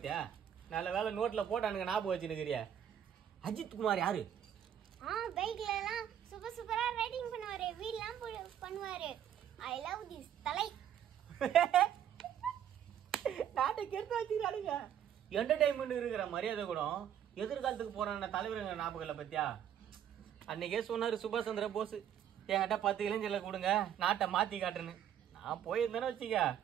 நல்ல வேலை நோட்ல போட்டானுங்க ஞாபகம் வச்சுருக்கிறிய. அஜித் குமார் யாரு? பைக்ல எல்லாம் சூப்பரா ரைடிங் பண்ணுவாரு, வீல்லாம் பண்ணுவாரு. ஐ லவ் திஸ் தலை. நாட்டை கெடுத்து வச்சுக்கிறானுங்க. என்டர்டைன்மெண்ட் இருக்கிற மரியாதை கூட எதிர்காலத்துக்கு போறான தலைவருங்க ஞாபகம்ல பத்தியா? அன்னைக்கே சொன்னாரு சுபாஷ் சந்திர போஸ், என்கிட்ட 10 இளைஞர்ல கொடுங்க நாட்டை மாத்தி காட்டுன்னு. நான் போயிருந்தேன்னு வச்சுக்க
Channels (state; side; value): quieter; left; 9.8 dB